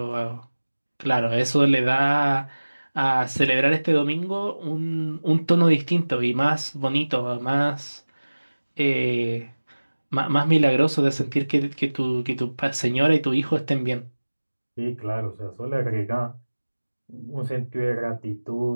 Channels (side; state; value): both; inverted; correlation -1.00